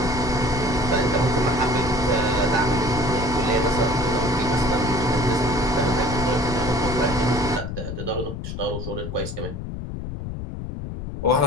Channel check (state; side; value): noise; left; rumble, 7 dB below the sound